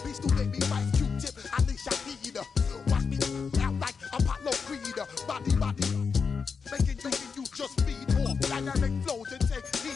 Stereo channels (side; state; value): right; quieter; 5.6 dB